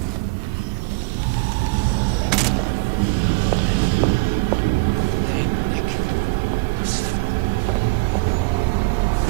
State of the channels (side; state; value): left; quieter; 27.6 dB